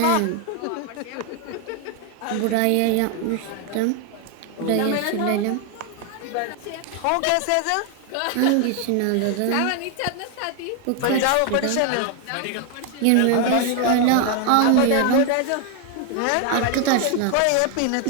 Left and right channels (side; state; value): both; different; correlation 0.01